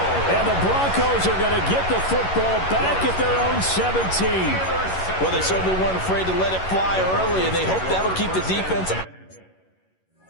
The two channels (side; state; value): right; late; 11 ms